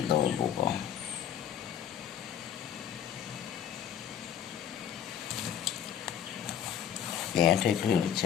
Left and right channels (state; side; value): quieter; right; 9.4 dB